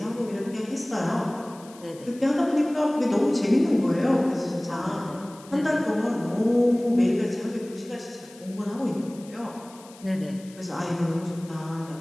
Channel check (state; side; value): noise; left; hiss, 22 dB below the sound